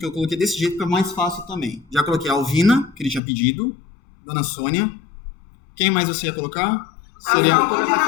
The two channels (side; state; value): right; drops out; at 3.2 s